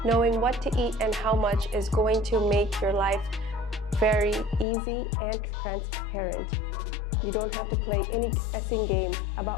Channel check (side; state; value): right; drops out; at 4.7 s